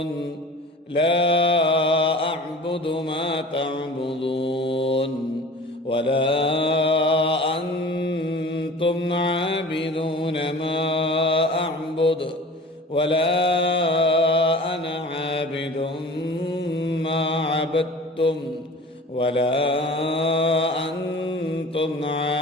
لا أعبد ما تعبدون ولا أنتم عابدون ما أعبد ولا أنا عابد ما عبدتم ولا أنتم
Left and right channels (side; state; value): both; normal; correlation 0.41